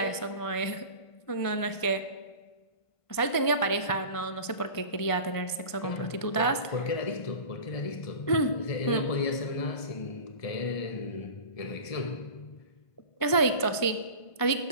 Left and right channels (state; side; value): late; right; 1.5 ms